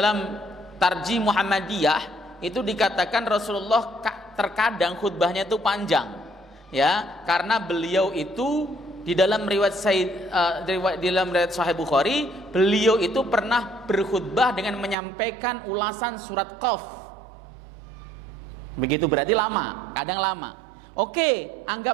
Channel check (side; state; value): left; drops out; at 15.0 s